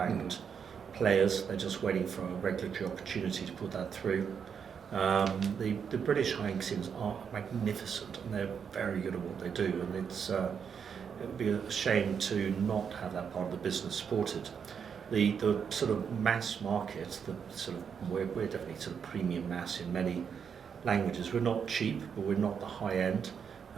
players. They're just waiting for a regulatory opportunity to put that through. The British high-end casinos are magnificent, and they're very good at what they do, and it would be a shame to not have that part of the business supported. The sort of mass market, we're definitely sort of premium mass in many languages. We're not cheap, but we're not the high end.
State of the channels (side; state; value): left; quieter; 7.0 dB